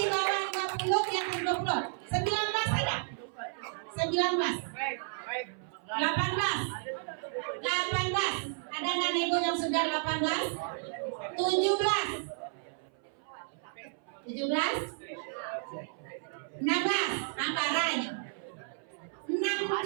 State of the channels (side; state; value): left; silent; 56 dB below the other